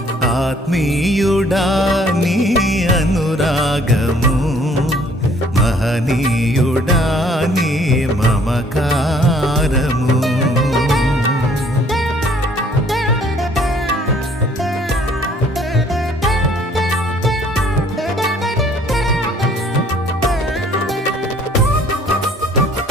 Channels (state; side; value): normal; both; correlation 0.59